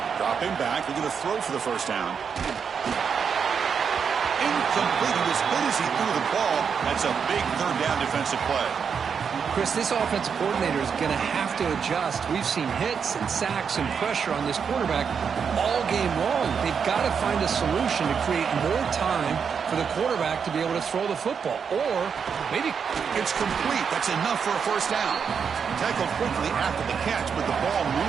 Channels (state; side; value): quieter; left; 6.6 dB